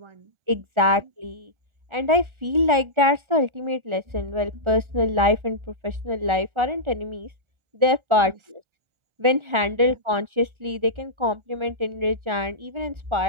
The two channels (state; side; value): late; left; 1.4 ms